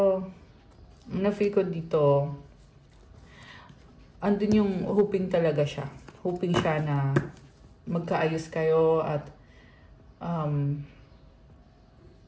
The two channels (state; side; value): identical; both; correlation 1.00